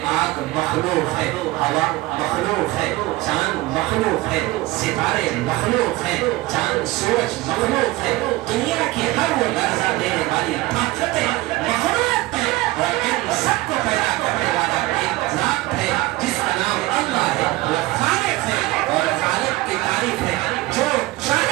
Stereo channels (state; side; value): quieter; left; 19.5 dB